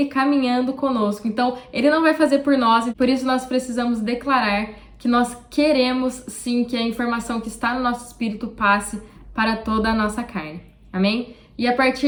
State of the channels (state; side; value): identical; both; correlation 1.00